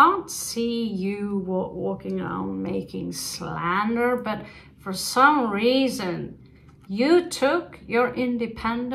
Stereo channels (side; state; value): both; identical; correlation 1.00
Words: see you walking around making slander, but for some reason, you took your